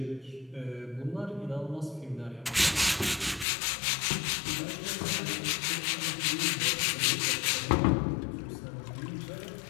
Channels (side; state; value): right; drops out; at 3.5 s